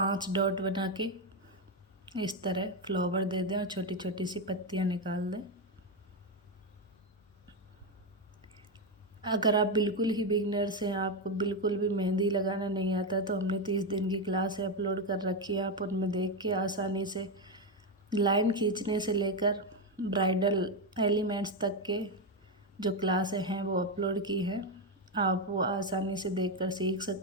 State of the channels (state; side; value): normal; both; correlation 0.08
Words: डॉट बना के इस तरह फ्लावर दे दें और छोटी छोटी सी पत्तियां निकाल दें। अगर आप बिल्कुल ही बिगिनर्स हैं, आपको बिल्कुल भी मेहंदी लगाना नहीं आता, तो हमने 30 दिन की क्लास अपलोड कर रखी है। आप उनमें देख के आसानी से लाइन खींचने से लेकर ब्राइडल एलिमेंट्स तक के जो क्लासें हैं वो अपलोड की है। आप वो आसानी से देखकर सीख